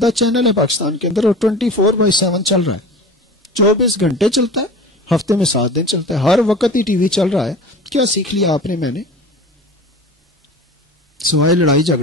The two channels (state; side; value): normal; both; correlation 0.36